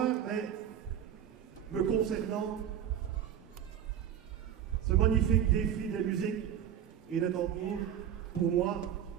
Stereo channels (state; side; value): quieter; left; 9.7 dB